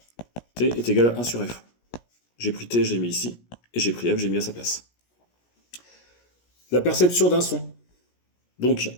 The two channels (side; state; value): right; late; 17 ms